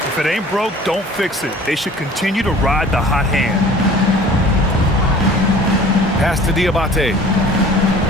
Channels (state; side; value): normal; both; correlation 0.47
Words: If it ain't broke, don't fix it. They should continue to ride the hot hand. Pass to Diabate.